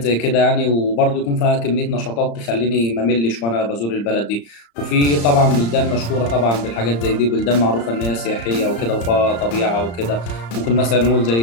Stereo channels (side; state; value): right; late; 35 ms